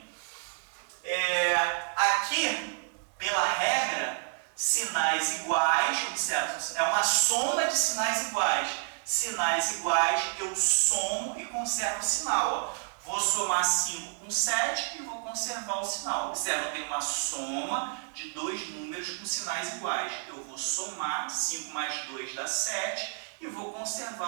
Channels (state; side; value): silent; left; 58 dB below the other